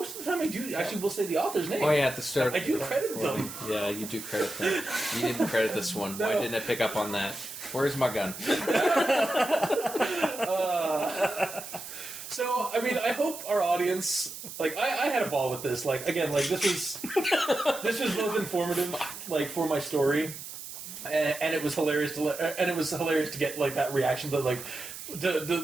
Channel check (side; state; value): right; noise; hiss, 11 dB below the sound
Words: of the time I do actually will say the author's name. Oh yeah, at the start. I do credit them. Yeah, you do credit them. You didn't credit this one. No. Why didn't I pick up on that? Where's my gun? So, I mean, I hope our audience, like, I had a ball with this. Like, again, like, this was both informative, like, for my story, and it was hilarious to get, like, that reaction, but, like,